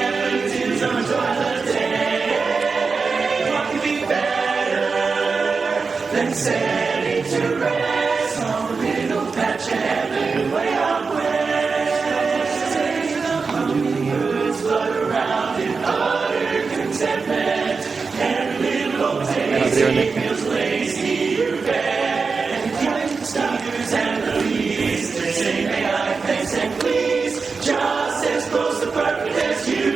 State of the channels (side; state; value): left; quieter; 4.7 dB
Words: the towards the day. and setting to rest on a little patch of heaven way out west. Sing the hummingbirds float around in utter contentment. Every little old daisy feels lazy, you bet. And the stars and the leaves, they say may I thanks and please, just as close to perfect as